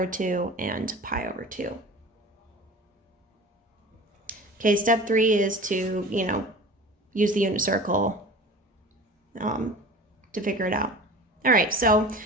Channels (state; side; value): normal; both; correlation 0.39